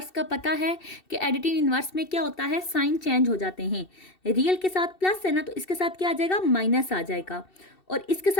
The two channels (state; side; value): late; right; 2.7 ms